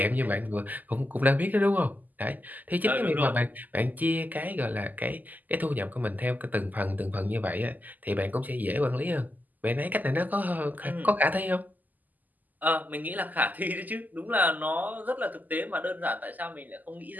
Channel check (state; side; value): late; left; 0.083 ms